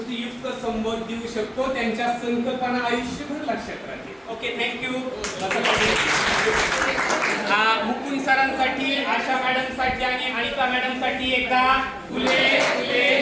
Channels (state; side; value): identical; both; correlation 1.00